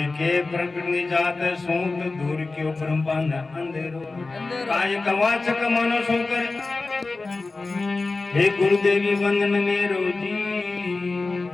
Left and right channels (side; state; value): right; quieter; 3.6 dB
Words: के प्रकट जात सूत दूर क्यों ब्रह्मांड अंधेरो काय कवाचक मनो सोकर हे गुरुदेवी वंदन में रोजी